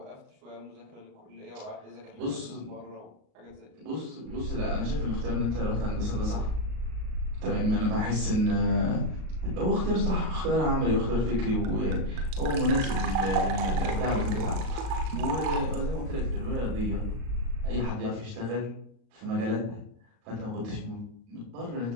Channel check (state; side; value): late; left; 38 ms